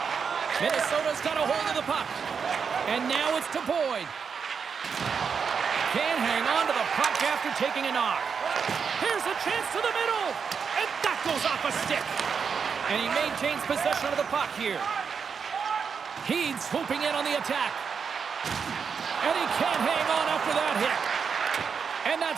Minnesota's got a hold of the puck. And now it's to Boyd. Can't hang on to the puck after taking a knock. Here's a chance to the middle. And that goes off a stick. And he maintains possession of the puck here. He's swooping in on the attack. And he can't hang on after that hit. And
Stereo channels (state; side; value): quieter; left; 6.2 dB